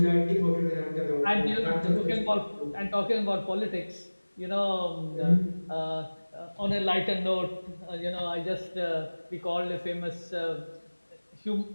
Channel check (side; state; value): both; inverted; correlation -1.00